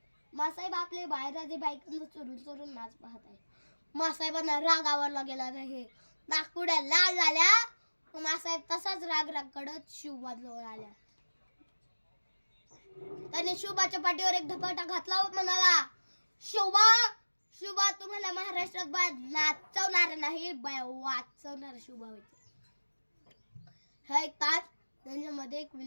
आपले बाळराजे बायकांचा चोरून चोरून नाच पाहत आहे. मासाहेबांना राग आवरला गेला नाही. नागपुड्या लाल झाल्या. मासाहेब तसाच राग कडत शिवबाजवळ आल्या. त्याने शिवबाच्या पाठीवर एक धपाटा घातला व म्हणाला, शिवबा शिवबा तुम्हाला महाराष्ट्रात बाय नाचवणार नाही, बाय वाचवणार शिवबा होते. हा एक तास त्यांच्यामध्ये एक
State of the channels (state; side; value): inverted; both; correlation -1.00